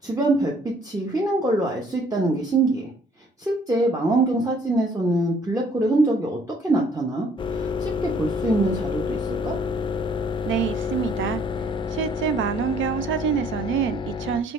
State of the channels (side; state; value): both; normal; correlation 0.61